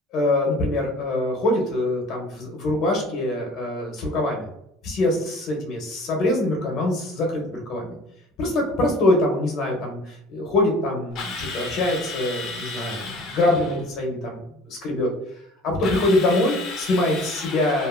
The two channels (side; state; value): both; normal; correlation 0.47